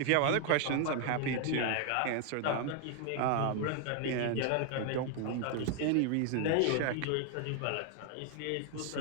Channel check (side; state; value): both; different; correlation 0.00